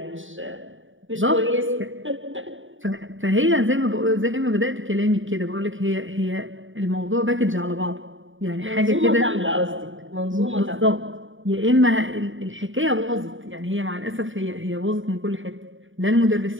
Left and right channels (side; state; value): left; late; 0.57 ms